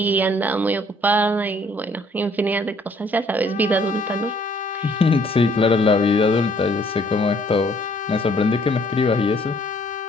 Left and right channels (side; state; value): both; normal; correlation 0.62